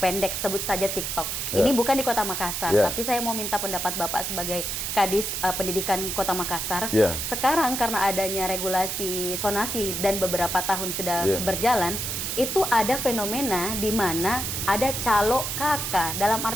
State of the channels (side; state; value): right; noise; hiss, 3 dB below the sound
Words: sebut saja TikTok. Ini bukan di Kota Makassar, Iya. tapi saya mau minta pendapat Bapak sebagai Kadis Pendidikan Kota Makassar. Iya. Sekarang karena adanya regulasi sonasi dan beberapa tahun sudah Iya. berjalan, itu ada fenomena di mana ada calo kakak, dalam